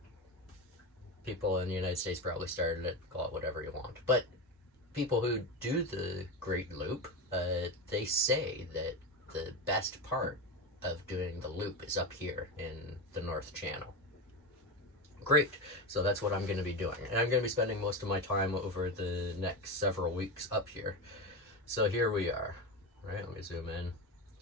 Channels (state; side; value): normal; both; correlation 0.18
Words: People in the United States probably started it, call it whatever you want. But people who do the Great Loop, they say that the best part of doing the loop is up here in the North Channel. Great. So that's what I'm going to be doing. And I'm going to be spending most of my time over the next several weeks up here. So here we are. Right, let me zoom in.